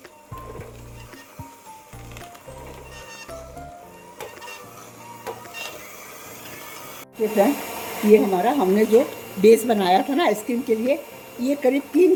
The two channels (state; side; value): identical; both; correlation 1.00